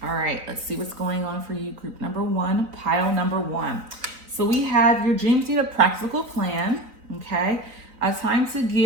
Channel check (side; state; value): left; late; 3.9 ms